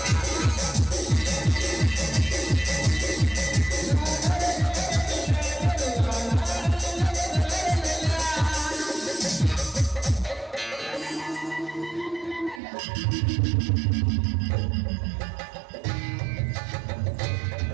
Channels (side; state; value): left; drops out; at 12.6 s